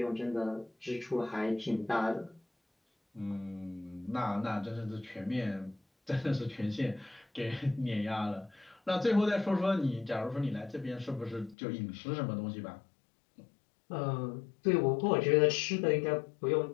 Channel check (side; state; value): right; drops out; at 11.6 s